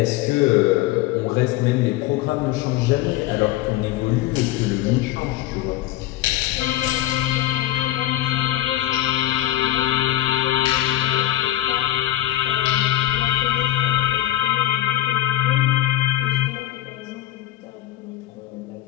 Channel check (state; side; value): quieter; right; 14.4 dB